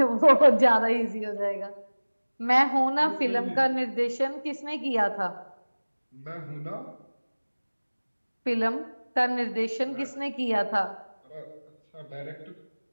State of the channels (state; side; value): inverted; both; correlation -1.00